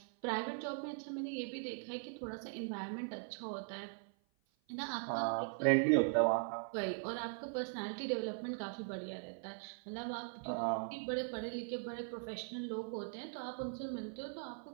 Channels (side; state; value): left; silent; 51 dB below the other